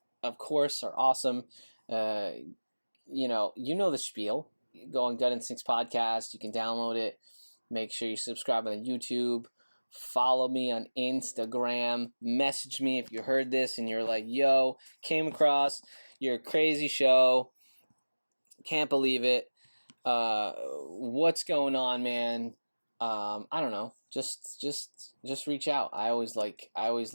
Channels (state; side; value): inverted; both; correlation -1.00